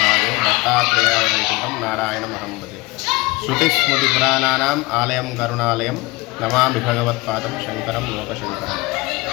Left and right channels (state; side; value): quieter; right; 22.9 dB